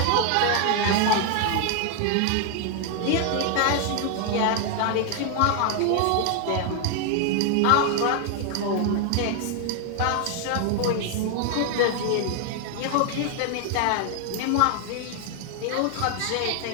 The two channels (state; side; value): different; both; correlation 0.00